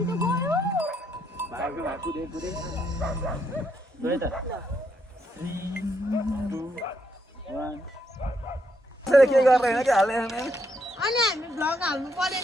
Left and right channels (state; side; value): normal; both; correlation 0.77